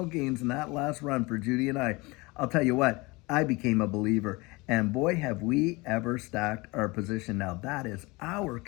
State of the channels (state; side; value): quieter; right; 24.4 dB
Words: gains in that last run for Judy and I'll tell you what, I became a believer. And boy, have we ever stacked our position. Now, that is our